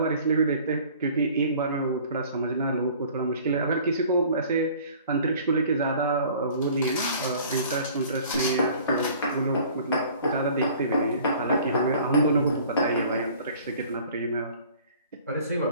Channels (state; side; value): inverted; both; correlation -0.50